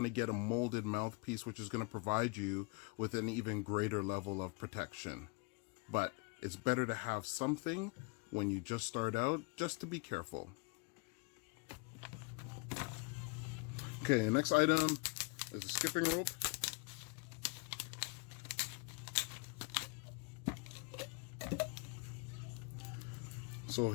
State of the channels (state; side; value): quieter; right; 30.4 dB